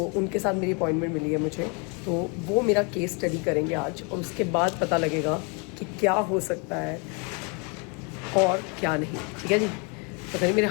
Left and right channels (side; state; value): right; quieter; 33.9 dB